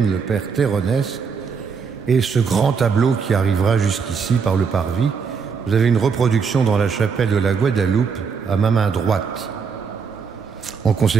le Père Terronès, et ce grand tableau qui arrivera jusqu'ici par le parvis. Vous avez une reproduction dans la chapelle de la Guadeloupe, à ma main droite. En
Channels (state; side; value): quieter; left; 5.8 dB